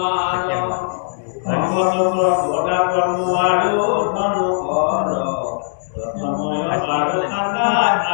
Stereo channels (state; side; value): silent; right; digital silence